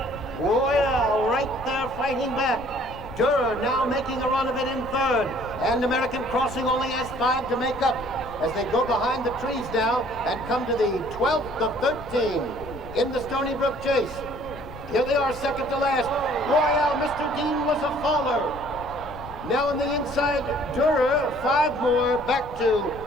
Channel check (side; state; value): left; noise; rumble, 15 dB below the sound